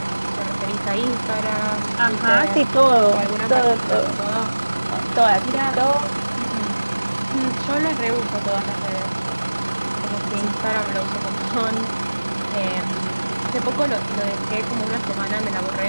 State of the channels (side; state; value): both; inverted; correlation -1.00